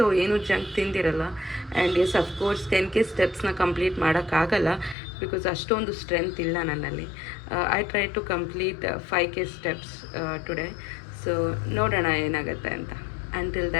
ಏನು ಜಂಕ್ ತಿಂದಿರಲ್ಲ. ಆ್ಯಂಡ್ ಎಸ್ ಅಫ್ಕೋರ್ಸ್ 10K ಸ್ಟೆಪ್ಸ್ನ ಕಂಪ್ಲೀಟ್ ಮಾಡೋಕ್ಕಾಗಲ್ಲ, ಬಿಕಾಸ್ ಅಷ್ಟೊಂದು ಸ್ಟ್ರೆಂತ್ ಇಲ್ಲ ನನ್ನಲ್ಲಿ. I try to complete 5K steps today. So ನೋಡೋಣ ಏನಾಗುತ್ತೆ ಅಂತ. Until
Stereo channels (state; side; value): drops out; right; at 5.0 s